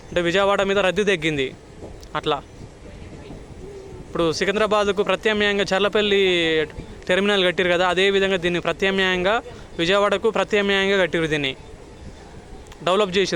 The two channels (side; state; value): both; identical; correlation 1.00